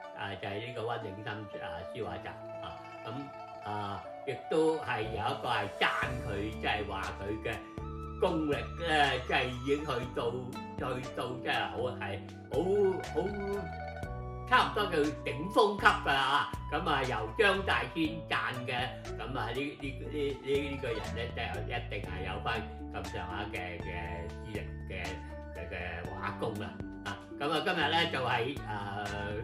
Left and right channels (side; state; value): both; identical; correlation 1.00